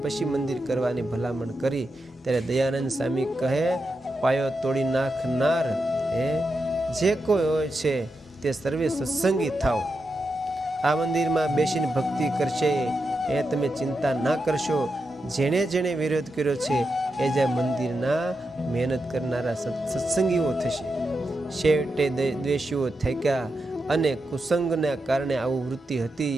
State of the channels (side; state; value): both; normal; correlation 0.87